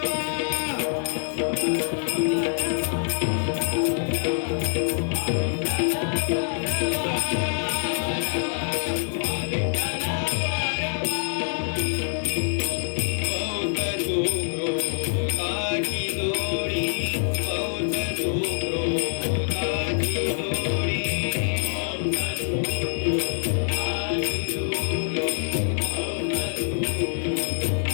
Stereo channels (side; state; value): right; silent; 61 dB below the other